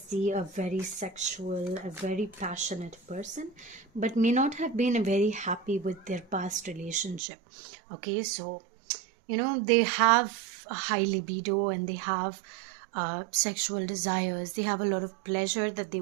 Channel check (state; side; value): drops out; left; at 7.2 s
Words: a very sexual, a very passionate person, but may not have been very happy with their past relationship. Okay, so they have a high libido, and they have sexual desires. They have a lot of pleasure that